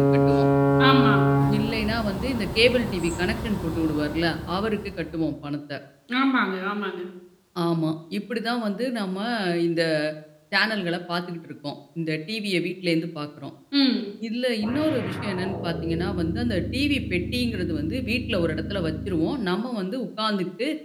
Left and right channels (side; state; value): both; identical; correlation 1.00